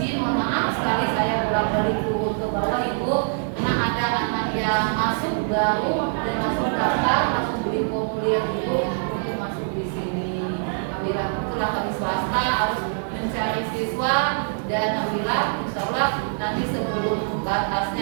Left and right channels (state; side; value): silent; left; 63 dB below the other